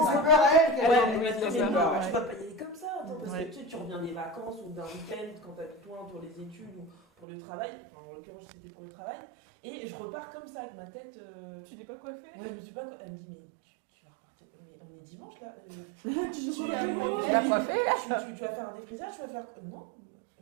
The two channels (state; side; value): drops out; left; at 7.2 s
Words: C'est peur à elle qu'elle Ouais, a- elle m'a dit, c'est mais peur, non, ouais. tu vas pas y aller comme ça, attends, parce que tu reviens des vacances ou d'un week-end quand t'as besoin pour les études ou pour le travail, enfin, en l'occurrence c'était pour le travail, et je repars comme ça avec ma tête. Tu n'es pas coiffée. Ouais, je me suis pas. Elle me dit mais tu vas repartir. Mais on est dimanche là. Il y a un problème. Tu vas faire un défrisage, tu vas faire. Non,